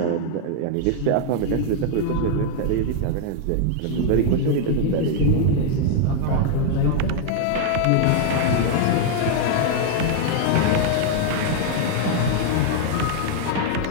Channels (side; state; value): both; different; correlation 0.00